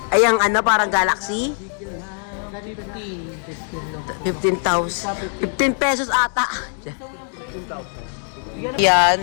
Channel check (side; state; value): right; silent; 56 dB below the other